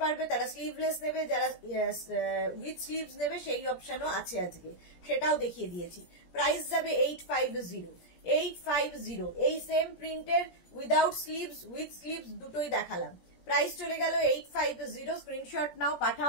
পারবে তারা স্লিভলেস নেবে, যারা উইথ স্লিভস নেবে সেই অপশনও আছে আজকে, সেটাও দেখিয়ে দিয়েছি। প্রাইস যাবে 850, 850, এই সেম প্রিন্টের উইদাউট স্লিভস উইথ স্লিভস দুটোই দেখালাম, প্রাইস চলে গেল 850, স্ক্রিনশট নাও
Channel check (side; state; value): right; late; 17 ms